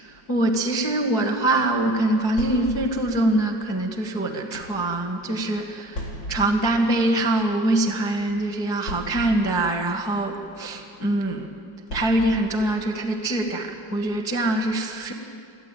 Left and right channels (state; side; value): late; right; 4.7 ms